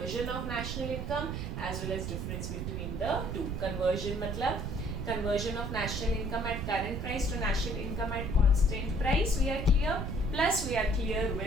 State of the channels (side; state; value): right; noise; rumble, 4 dB below the sound